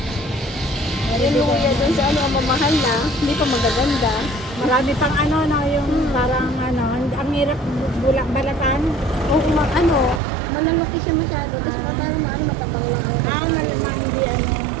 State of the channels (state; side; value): drops out; left; at 10.2 s